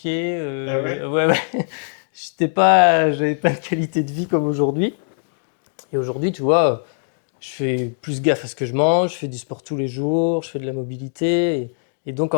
Ah ouais? Ouais, ouais. J'avais pas de qualité de vie comme aujourd'hui. Et aujourd'hui, tu vois, je fais plus gaffe à ce que je mange, je fais du sport tous les jours, je fais de la mobilité. Et donc,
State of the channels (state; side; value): silent; right; digital silence